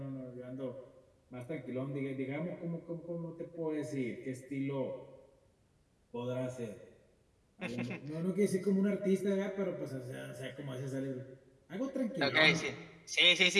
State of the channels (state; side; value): identical; both; correlation 1.00